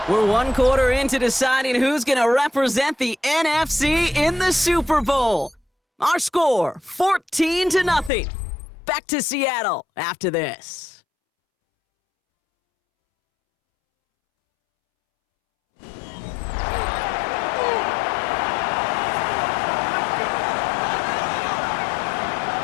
We're one quarter into deciding who's going to represent the NFC in the Super Bowl. Our score, 14-0. Back to Seattle after this.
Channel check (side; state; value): right; drops out; at 8.1 s